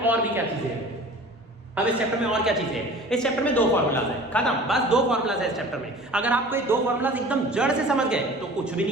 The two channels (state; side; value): normal; both; correlation 0.43